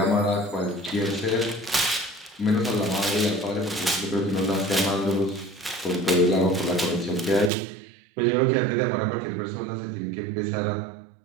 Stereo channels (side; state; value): left; drops out; at 7.5 s